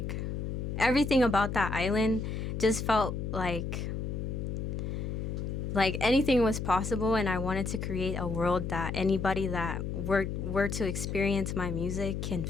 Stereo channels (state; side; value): noise; left; hum, 3 dB below the sound